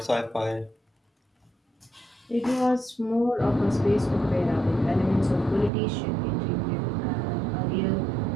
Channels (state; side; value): drops out; left; at 5.7 s